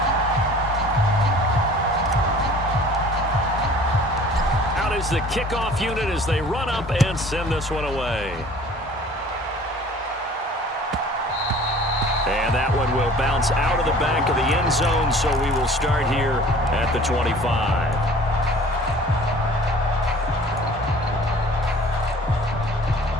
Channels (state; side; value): normal; both; correlation 0.49